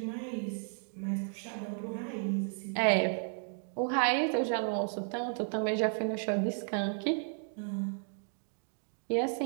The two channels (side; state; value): left; silent; 55 dB below the other